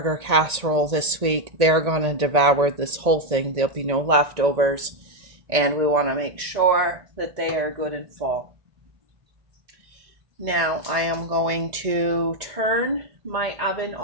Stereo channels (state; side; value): late; left; 1.9 ms